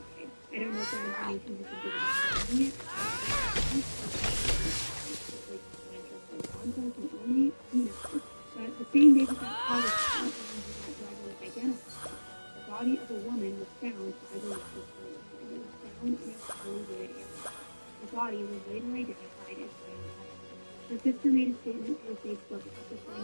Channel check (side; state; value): both; inverted; correlation -1.00